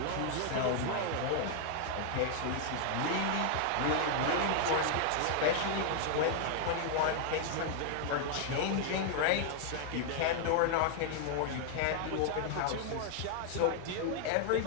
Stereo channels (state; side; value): different; both; correlation 0.00